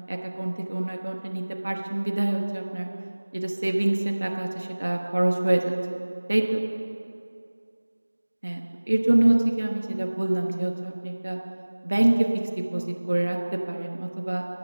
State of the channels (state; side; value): inverted; both; correlation -1.00